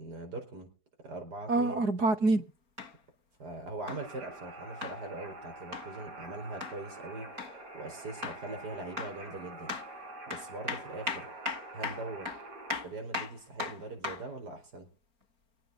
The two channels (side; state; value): left; late; 4.4 ms